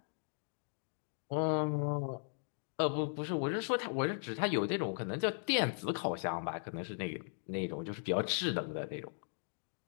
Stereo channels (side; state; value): right; silent; digital silence